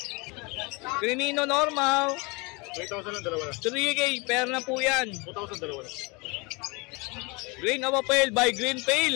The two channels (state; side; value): quieter; right; 28.1 dB